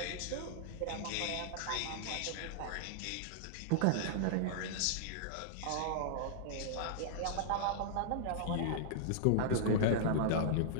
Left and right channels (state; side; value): different; both; correlation -0.01